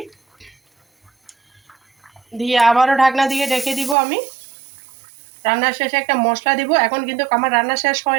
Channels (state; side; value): drops out; left; at 4.0 s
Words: দিয়ে আবারও ঢাকনা দিয়ে ঢেকে দিব আমি। রান্নার শেষে একটা মশলা দিব। এখন কিন্তু আমার রান্না শেষ